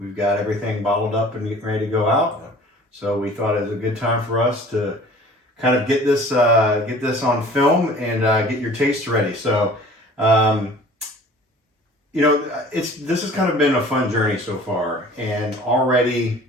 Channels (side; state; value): both; normal; correlation 0.47